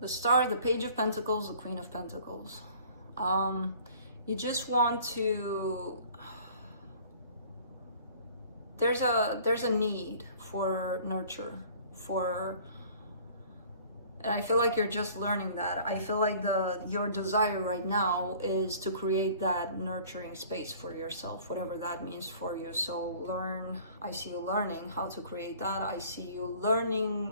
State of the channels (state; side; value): inverted; both; correlation -0.51